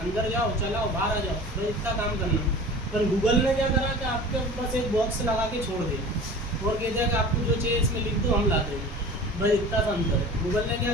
अंदर जाओ, चलाओ, बाहर आ जाओ, बस इतना काम करना। पर गूगल ने क्या करा कि आपके बस एक बॉक्स लगा के छोड़ दिया और कहते हैं कि आपको जो चाहिए इसमें लिख दो, हम ला देंगे। बस इतना सा अंतर है। गूगल ने क्या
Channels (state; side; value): normal; both; correlation 0.39